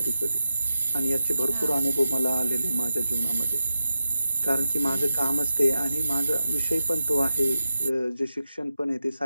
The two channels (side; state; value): both; inverted; correlation -0.91